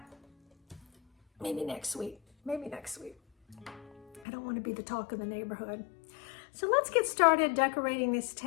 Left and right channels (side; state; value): right; drops out; at 4.2 s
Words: maybe next week. I don't want to be the talk of the neighborhood. So let's get started decorating this